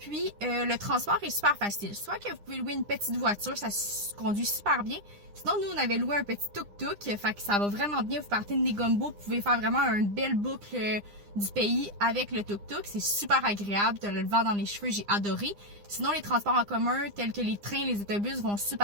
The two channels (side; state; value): left; late; 9.8 ms